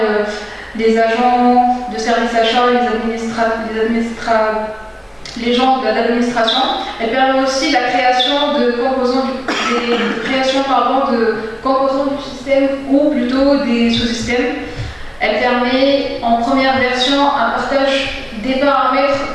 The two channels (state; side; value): identical; both; correlation 1.00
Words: les agents de service achat, les gens de l'administration. Elle permet aussi la création de composants composants du système ou plutôt des sous-systèmes. Elle permet en première version un partage des paramètres